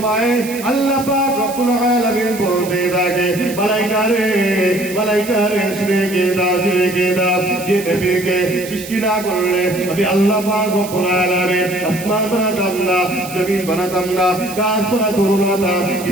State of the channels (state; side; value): noise; right; hiss, 13 dB below the sound